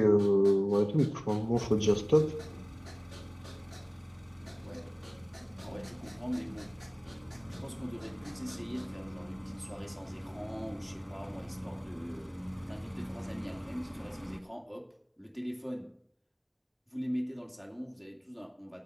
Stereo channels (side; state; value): both; identical; correlation 1.00